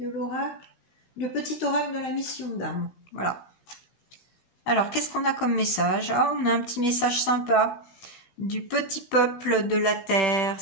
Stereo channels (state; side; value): late; right; 16 ms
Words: l'oracle, le petit oracle de la mission d'âme. Voilà. Alors qu'est-ce qu'on a comme message? Ah, on a un petit message sympa du petit peuple de la terre,